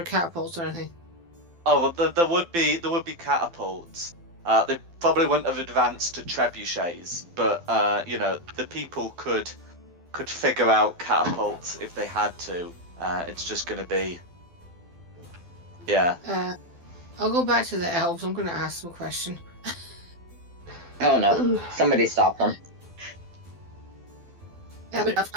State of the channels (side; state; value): left; late; 12 ms